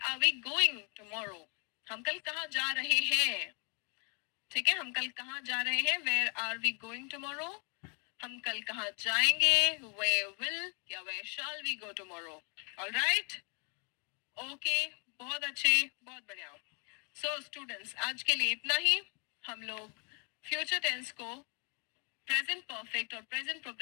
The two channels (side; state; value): right; quieter; 35.8 dB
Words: we going tomorrow? हम कल कहाँ जा रहे हैं? ठीक है, हम कल कहाँ जा रहे हैं? Where are we going tomorrow. हम कल कहाँ जाएंगे? वेयर विल या where shall we go tomorrow. Alright, okay, बहुत अच्छे, बहुत बढ़िया. सो स्टूडेंट्स, आज के लिए इतना ही. हम लोग फ्यूचर टेंस को, प्रेजेंट परफेक्ट और प्रेजेंट